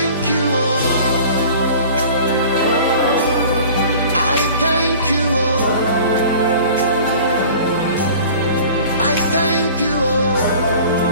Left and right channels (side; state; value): both; inverted; correlation -0.44